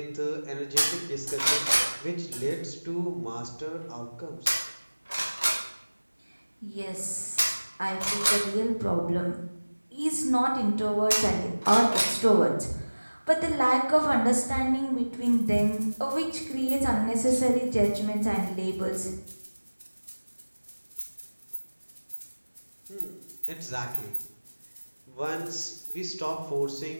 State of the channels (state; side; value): inverted; both; correlation -1.00